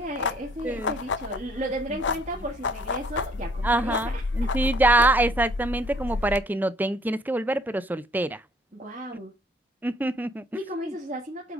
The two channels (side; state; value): both; normal; correlation 0.61